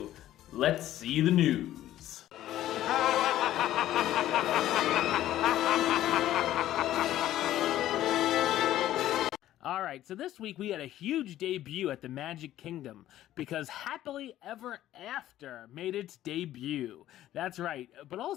let's see the news. Alright, so this week we had a huge debut at the Magic Kingdom because Happily Ever After made its debut. That's right, but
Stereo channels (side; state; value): right; quieter; 13.4 dB